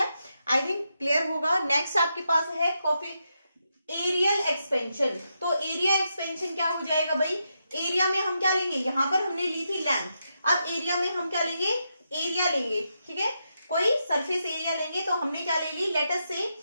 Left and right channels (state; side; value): inverted; both; correlation -0.84